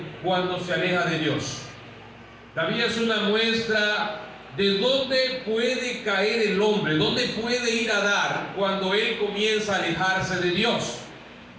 cuando se aleja de Dios. David es una muestra de dónde puede caer el hombre, dónde puede ir a dar cuando él comienza a alejarse de Dios.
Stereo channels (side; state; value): both; identical; correlation 1.00